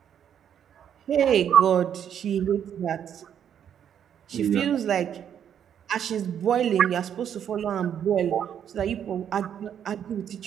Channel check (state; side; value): quieter; left; 9.0 dB